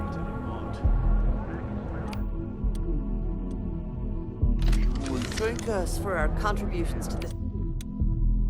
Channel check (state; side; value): identical; both; correlation 1.00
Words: Thank us for our contributions to this.